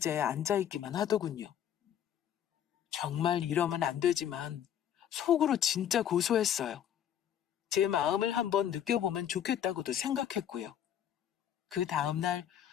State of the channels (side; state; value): right; quieter; 10.0 dB